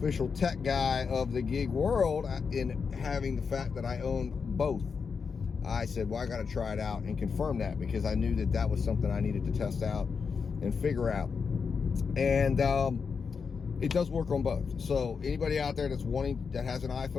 tech guy of the gig world, in having the fact that I own both, I said, well, I got to try it out and confirm that, because I knew that that was something I needed to test out and figure out. And it does work on both. So anybody out there that has an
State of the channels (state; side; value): quieter; right; 5.6 dB